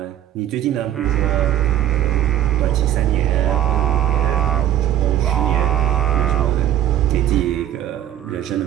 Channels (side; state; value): left; quieter; 11.6 dB